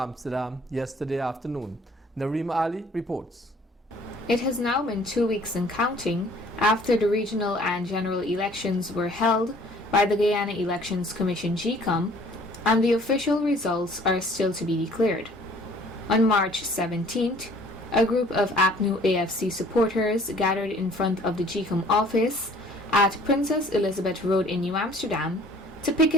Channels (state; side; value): normal; both; correlation 0.55